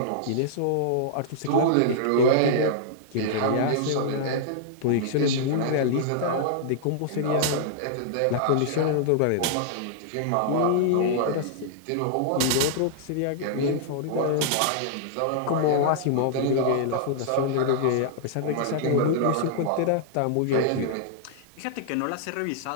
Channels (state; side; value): different; both; correlation -0.01